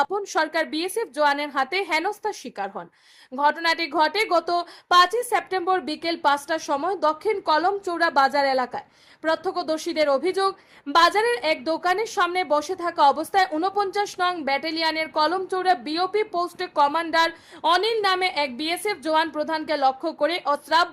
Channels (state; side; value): identical; both; correlation 1.00